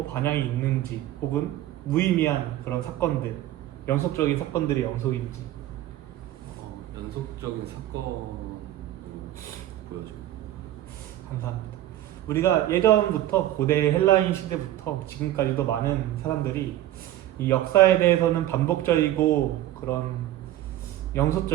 반향이 있는지, 혹은 무의미한 그런 사건들, 연속적인 사건들의 연속인지. 연속적인 사건을 보여줘요. 감사합니다. 우리가 예전부터 고대 헬라인 시대부터 지금까지도 많은 사람들이 이 역사에 대해서는 반복적이고 그런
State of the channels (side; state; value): left; quieter; 13.9 dB